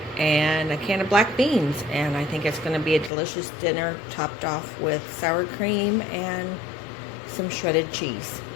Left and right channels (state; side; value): drops out; right; at 3.1 s